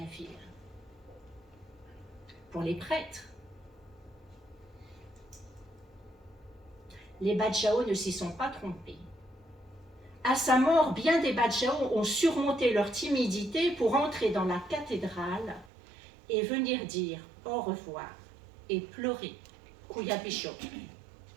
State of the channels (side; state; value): left; drops out; at 15.7 s